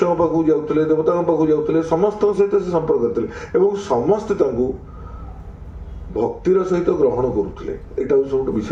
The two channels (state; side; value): identical; both; correlation 1.00